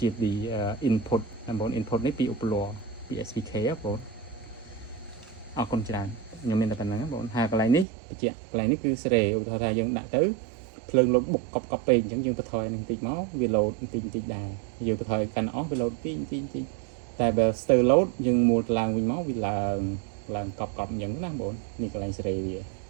input ណាបង input នេះពីឧបលោពី SPK បងអរគុណច្រើនខ្ញុំមានតែប៉ុណ្្នឹងបងហើយកន្លែងនេះបញ្ជាក់កន្លែងនេះគឺសេរីឧទាហរណ៍ថាយើងដាក់ទៅភ្លើងលោតបុកកប់ពេកអញ្ចឹងយើងបន្ថយនឹងបន្តិចមកវាលោតបន្តិចដែរយើងបន្ថយកាន់អស់វាលោតបន្តិចតែបើស្ទើរលោតយើងមួលឡើងវិញមកវាឡើងកប់អញ្ចឹងណាបងនេះកន្លែងសេរីវា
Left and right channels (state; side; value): drops out; left; at 7.9 s